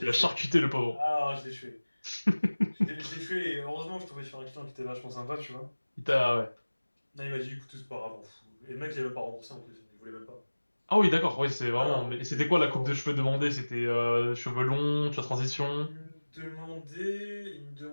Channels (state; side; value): inverted; both; correlation -1.00